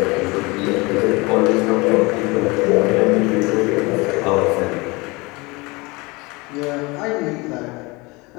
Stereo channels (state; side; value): quieter; right; 25.0 dB